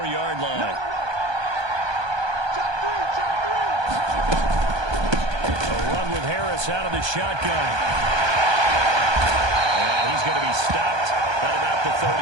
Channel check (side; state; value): left; late; 1.2 ms